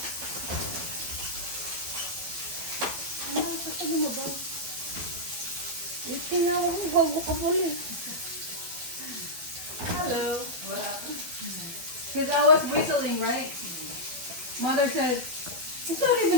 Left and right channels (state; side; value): late; left; 12 ms